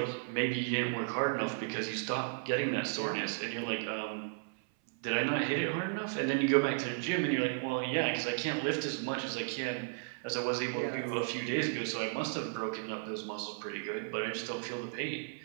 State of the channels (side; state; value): left; silent; 55 dB below the other